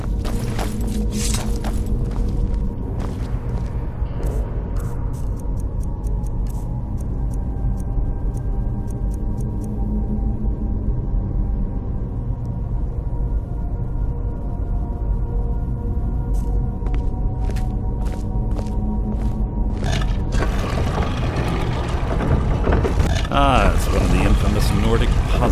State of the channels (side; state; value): both; identical; correlation 1.00